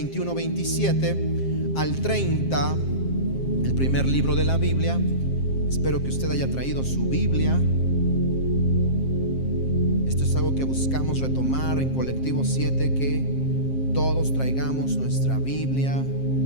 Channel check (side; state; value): right; late; 7.5 ms